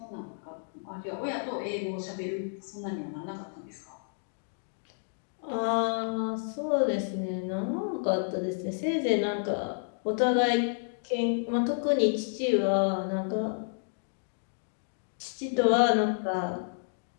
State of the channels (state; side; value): silent; right; digital silence